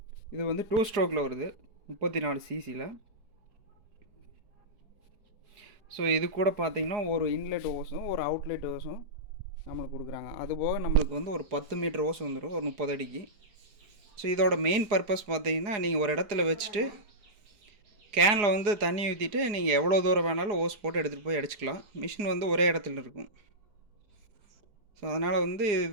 இது வந்து 2 ஸ்ட்ரோக்கில் வருது, 34 cc. ஸோ இது கூட பார்த்திங்கன்னா ஒரு இன்லெட் ஓஸும் ஒரு அவுட்லெட் ஓஸும் நம்மளுக்கு கொடுக்குறாங்க. அதுபோக நம்மளுக்கு வந்து ஒரு 10 மீட்டர் ஓஸ் வந்துடும், ஒரு 30 அடிக்கு. ஸோ இதோட மெயின் பர்பஸ் பார்த்தீங்கன்னா, நீங்கள் ஒரு இடத்துல வச்சுட்டு கேனில் வந்து தண்ணி ஊற்றிட்டு நீங்கள் எவ்வளோ தூரம் வேணாலும் ஓஸ் போட்டு எடுத்துகிட்டு போய் அடிச்சுக்கலாம். மிஷின் வந்து ஒரே இடத்துல இருக்கும். ஸோ அதனால் வந்து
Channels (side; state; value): left; late; 4.8 ms